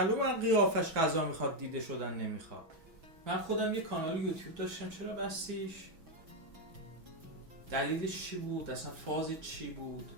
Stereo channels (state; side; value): late; left; 6.2 ms